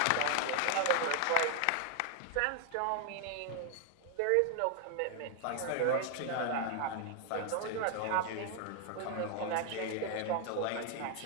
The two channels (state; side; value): different; both; correlation 0.00